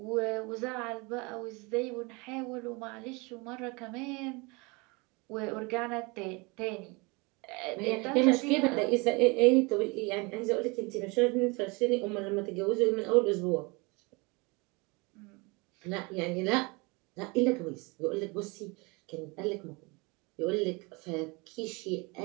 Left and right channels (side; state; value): left; quieter; 27.5 dB